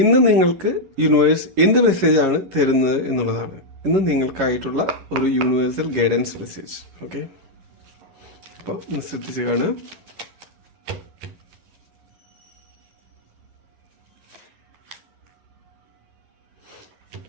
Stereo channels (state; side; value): late; left; 11 ms